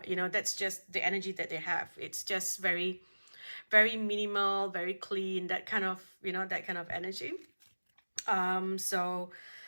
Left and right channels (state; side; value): inverted; both; correlation -1.00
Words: that's just the energy that they have. It's just very minimal, very clean, that kind of energy. So